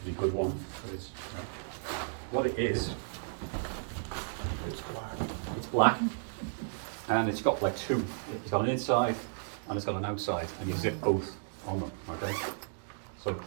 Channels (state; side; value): silent; left; digital silence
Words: good one, but it's what it is. It's black. It's black, and it's got like two. It's got an inside and it's got an outside, and you zip both on them. Okay. So